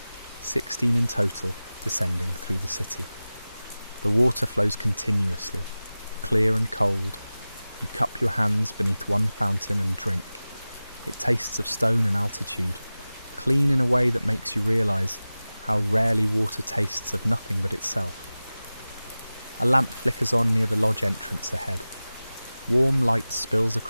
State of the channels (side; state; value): both; inverted; correlation -0.97